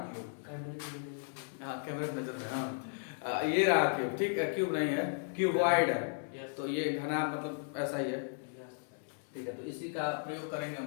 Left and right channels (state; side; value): silent; right; digital silence